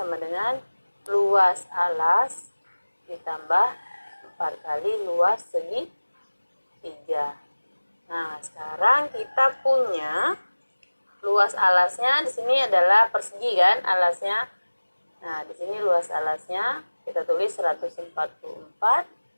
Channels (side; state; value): both; inverted; correlation -1.00